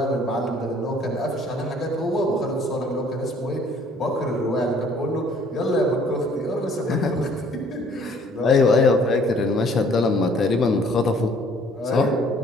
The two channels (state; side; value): normal; both; correlation 0.58